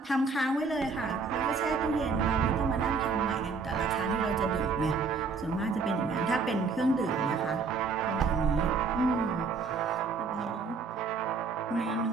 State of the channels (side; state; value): left; quieter; 4.7 dB